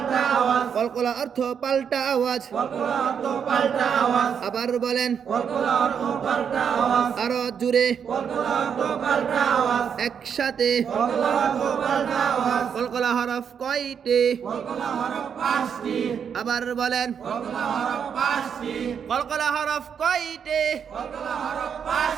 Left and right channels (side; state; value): left; quieter; 7.4 dB